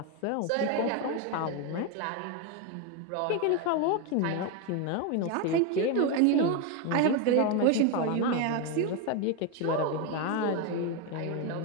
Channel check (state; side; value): different; both; correlation 0.02